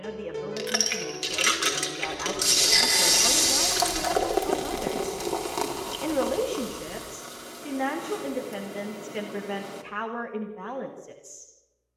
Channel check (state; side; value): identical; both; correlation 1.00